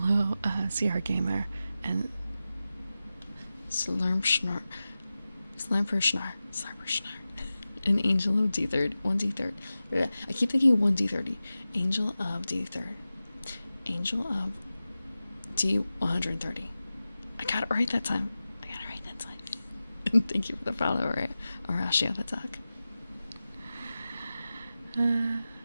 CR Gamer and Slurmschnarr, and Angel of D3rd, 1D3rd. I keep thinking 1D30. Angel of D3rd. Angel of D130. I got it right that time. And thank you for the follow, Horatio the duck.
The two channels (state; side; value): inverted; both; correlation -0.94